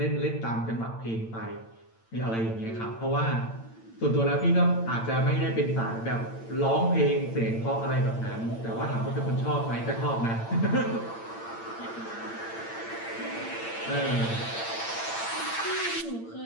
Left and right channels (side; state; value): right; late; 8.8 ms